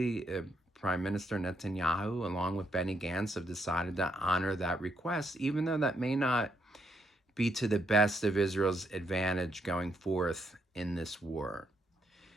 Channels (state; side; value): normal; both; correlation 0.76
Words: Prime Minister Netanyahu, along with Benny Gantz, have decided to honor that request, even though that may not be to the best of Israel's advantage going forth in this war.